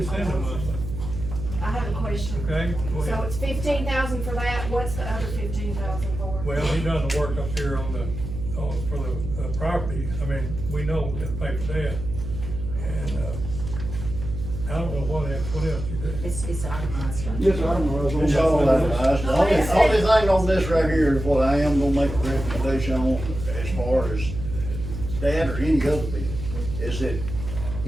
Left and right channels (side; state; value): right; noise; hum, 7 dB below the sound